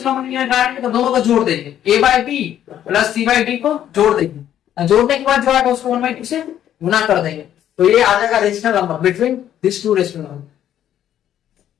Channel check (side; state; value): right; quieter; 10.9 dB